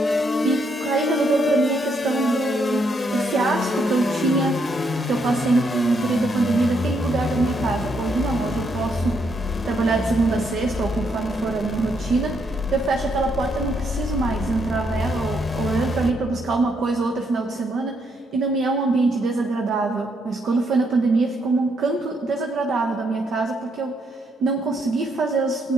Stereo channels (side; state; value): both; normal; correlation 0.75